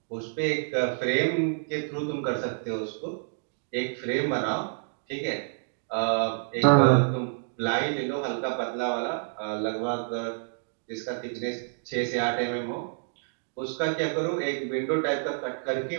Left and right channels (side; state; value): left; silent; digital silence